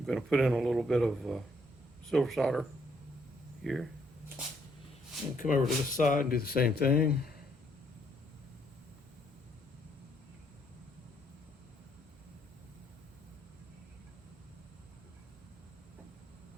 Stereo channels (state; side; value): normal; both; correlation 0.71